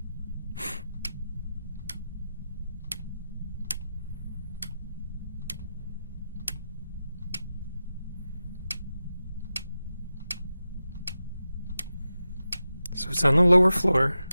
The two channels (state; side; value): inverted; both; correlation -0.92